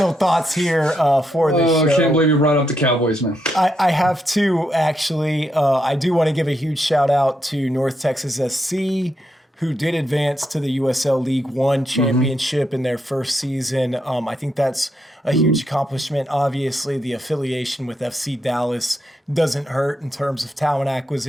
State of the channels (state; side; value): normal; both; correlation 0.81